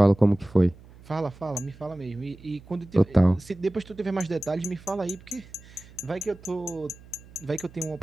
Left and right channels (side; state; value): right; noise; hum, 22 dB below the sound